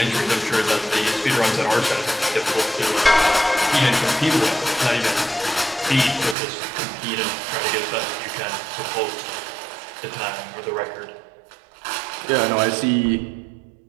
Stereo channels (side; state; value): left; drops out; at 6.4 s